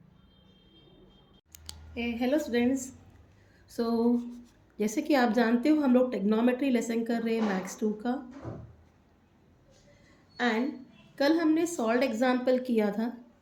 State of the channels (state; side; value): identical; both; correlation 1.00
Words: Hello students. So जैसे कि आप जानते हो हम लोग टेक्नोमेट्री लेसन कर रहे हैं मैथ्स 2 का। एंड कल हमने सॉल्व एग्जाम्पल किया था।